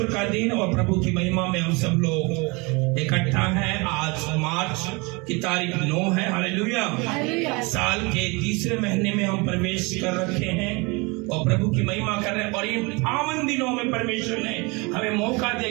का दिन और प्रभु की महिमा में हम सब लोग इकट्ठा हैं। आज मार्च की तारीख 9 है। हालेलुया। साल के तीसरे महीने में हम प्रवेश कर रखे हैं और प्रभु की महिमा कर रहे हैं। और इन पावन दिनों में परमेश्वर ने हमें मौका दिया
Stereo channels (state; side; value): quieter; left; 27.4 dB